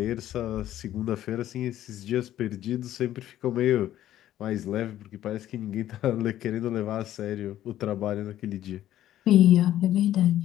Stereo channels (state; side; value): quieter; right; 12.7 dB